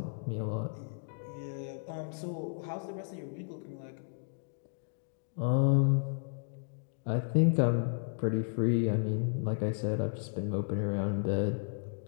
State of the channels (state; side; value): silent; right; digital silence